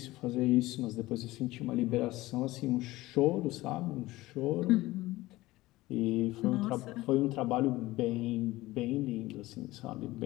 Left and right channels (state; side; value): quieter; right; 18.4 dB